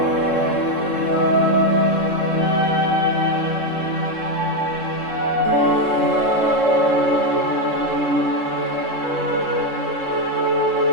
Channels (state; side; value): late; right; 3.7 ms